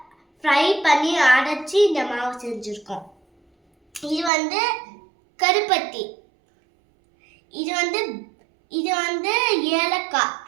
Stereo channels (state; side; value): drops out; left; at 4.3 s